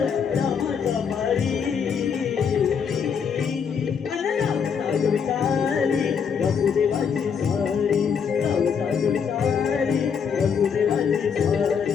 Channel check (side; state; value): right; quieter; 6.7 dB